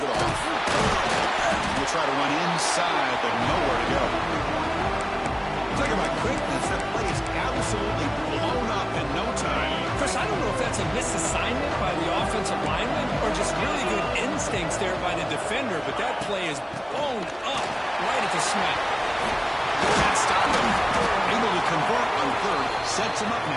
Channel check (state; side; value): identical; both; correlation 1.00